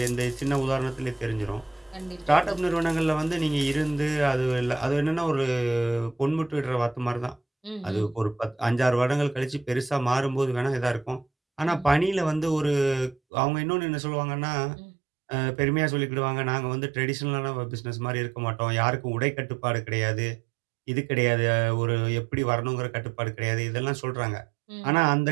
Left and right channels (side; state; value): left; drops out; at 13.2 s